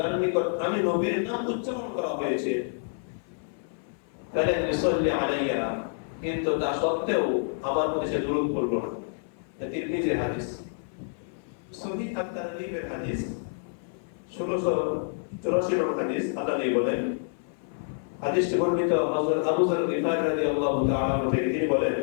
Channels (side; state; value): right; silent; 56 dB below the other